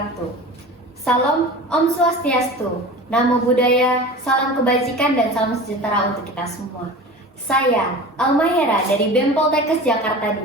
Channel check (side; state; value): both; normal; correlation 0.35